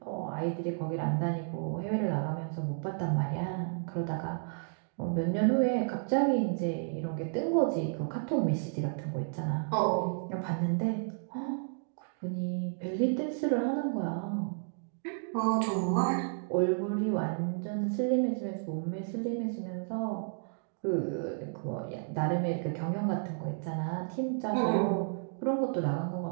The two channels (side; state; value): left; silent; digital silence